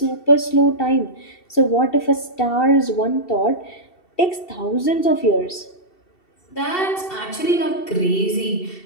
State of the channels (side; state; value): right; late; 2.7 ms